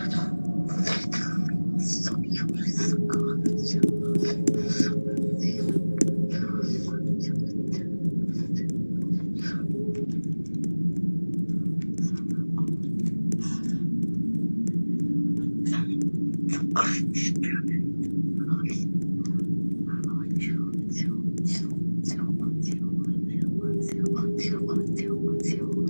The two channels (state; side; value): inverted; both; correlation -1.00